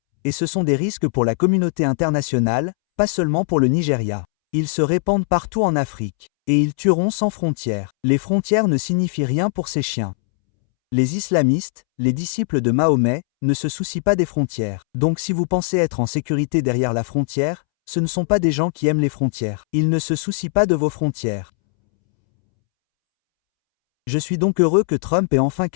Et ce sont des risques pour la communauté internationale, pas seulement pour le Nigeria. Ils se répandent partout en Afrique. Et ils tueront sans frontières. Les frontières ne signifient rien pour ces chiens. Les islamistes, les disciples de Mahomet, ne se soucient pas des frontières. Donc si vous pensez être en sécurité derrière la frontière, ce ne sont pas des gens qui aiment les frontières. Ils ne se soucient pas de vos frontières. Je suis donc heureux que Trump ait enfin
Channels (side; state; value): right; silent; 66 dB below the other